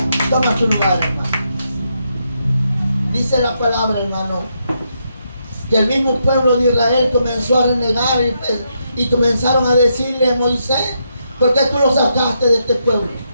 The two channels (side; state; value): both; inverted; correlation -0.80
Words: Toma tu lugar, hermano. Dice la palabra, hermano, que el mismo pueblo de Israel comenzó a renegar y comenzaron a decirle a Moisés: ¿por qué tú lo sacaste de este pueblo?